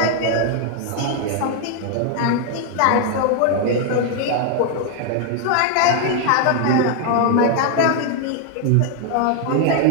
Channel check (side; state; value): both; different; correlation 0.00